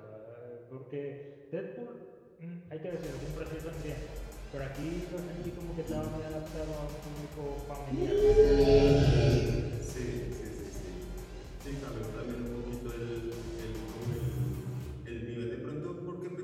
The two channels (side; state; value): both; identical; correlation 1.00